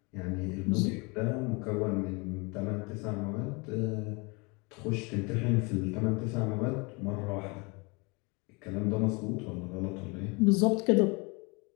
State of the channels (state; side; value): quieter; right; 28.9 dB